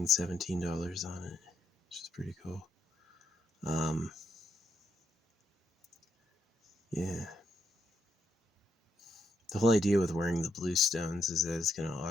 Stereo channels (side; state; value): both; normal; correlation 0.78